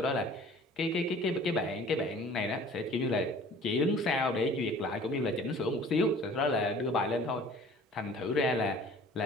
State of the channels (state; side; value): normal; both; correlation 0.48